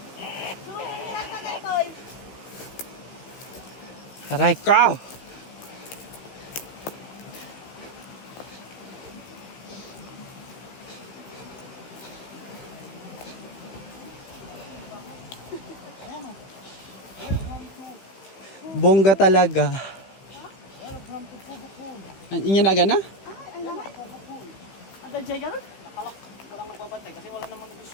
Aray ko! Bongga talaga. Inyo na gana? Ada jay ka na? Walang nagbabantay kasi wala namang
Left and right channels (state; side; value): late; right; 15 ms